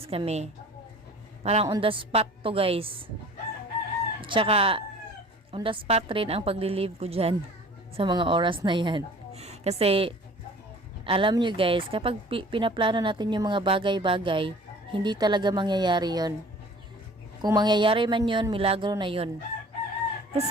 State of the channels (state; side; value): normal; both; correlation 0.47